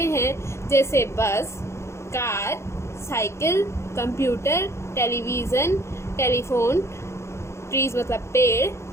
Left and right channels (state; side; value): late; right; 0.13 ms